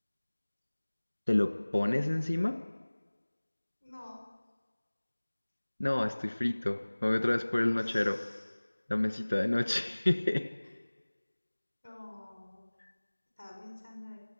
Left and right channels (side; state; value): both; inverted; correlation -1.00